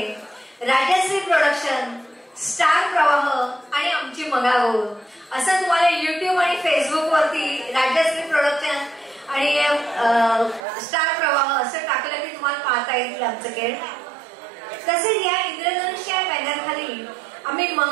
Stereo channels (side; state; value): left; drops out; at 10.6 s